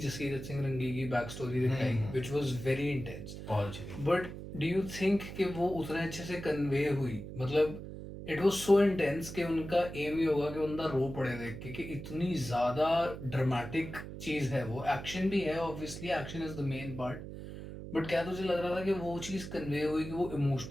सिंह रंगी की बैक स्टोरी दिखाई, विच वाज वेरी इंटेंस। बहुत अच्छी थी। बट डू यू थिंक कि वो उतना अच्छे से कन्वे हुई? मतलब इट वाज सो इंटेंस कि उनका एम ही होगा कि बंदा रो पड़े देख के, कि इतनी ज़्यादा ड्रामेटिक चीज़ है वो। एक्शन भी है, obviously action is the main part, but क्या तुझे लग रहा था कि वो चीज़ कन्वे हुई कि वो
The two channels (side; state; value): right; noise; hum, 10 dB below the sound